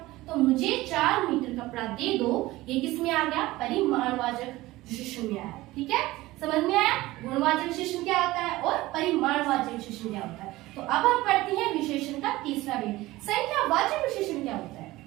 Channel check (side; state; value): left; quieter; 18.4 dB